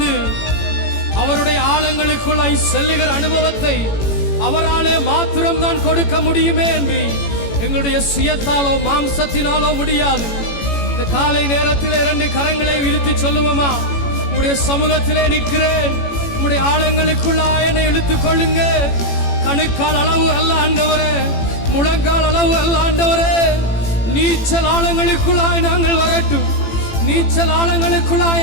அவருடைய ஆழங்களுக்குள்ளாய் செல்லுகிற அனுபவத்தை அவராலே மாத்திரம் தான் கொடுக்க முடியுமே என்று எங்களுடைய சுயத்தாலோ மாம்சத்தினாலோ முடியாது. இந்த காலை நேரத்தில் 2 கரங்களை விரித்து சொல்லுவோமா? உம்முடைய சமூகத்திலே நிற்கிறேன், உம்முடைய ஆழங்களுக்குள்ளாய் என்னை இழுத்துக் கொள்ளுங்க. கணுக்கால் அளவு அல்ல ஆண்டவரே, முழங்கால் அளவு அல்ல ஆண்டவரே, நீச்சல் ஆழங்களுக்குள்ளாய் நாங்கள் வரட்டும். நீச்சல் ஆழங்களுக்குள்ளாய்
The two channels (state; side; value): late; right; 18 ms